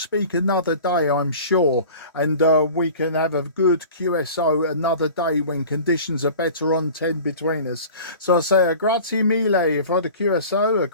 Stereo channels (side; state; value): both; inverted; correlation -0.41